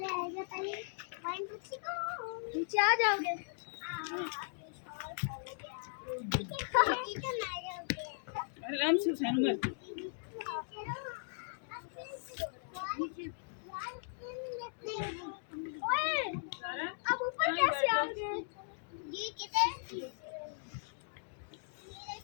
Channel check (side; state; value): right; silent; digital silence